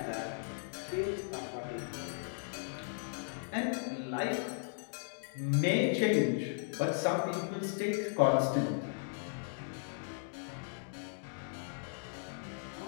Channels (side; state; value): right; silent; digital silence